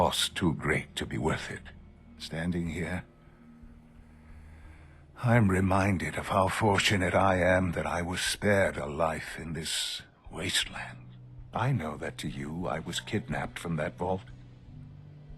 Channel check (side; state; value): both; identical; correlation 1.00